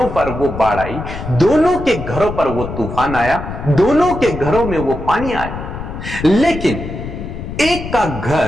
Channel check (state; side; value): noise; left; rumble, 8 dB below the sound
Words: पर वो बाढ़ आई, दोनों के घरों पर वो तूफान आया, दोनों के घरों में वो पानी आया। लेकिन एक का